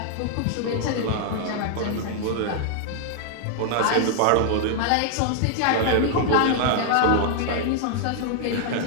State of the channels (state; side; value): different; both; correlation 0.00